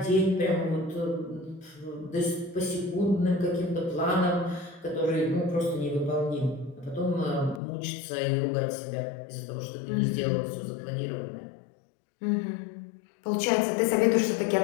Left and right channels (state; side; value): drops out; right; at 7.6 s